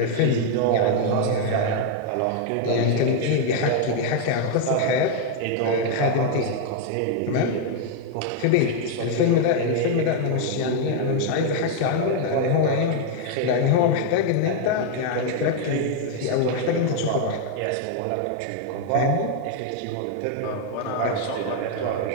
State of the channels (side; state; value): both; different; correlation 0.00